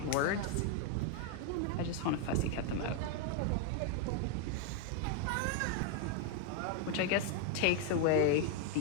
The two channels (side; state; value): both; different; correlation 0.01